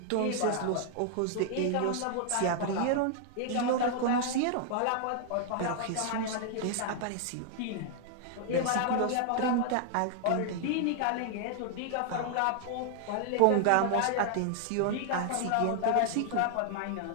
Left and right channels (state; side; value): different; both; correlation 0.00